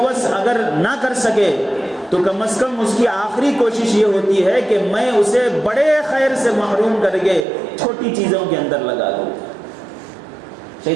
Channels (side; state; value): left; drops out; at 7.5 s